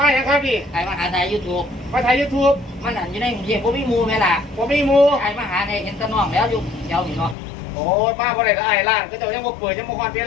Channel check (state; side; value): drops out; right; at 7.4 s